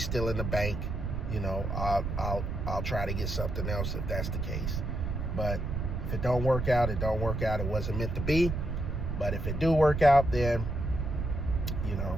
still in the bank. I'll try to get something else if that's the case. But if it don't work out, it don't work out. It wasn't meant to be. But if it do work out, then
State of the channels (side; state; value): right; noise; rumble, 3 dB below the sound